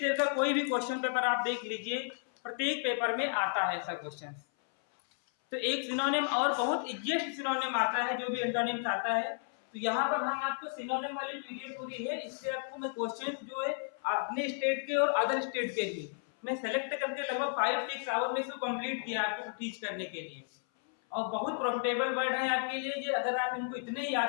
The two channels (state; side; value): silent; right; 56 dB below the other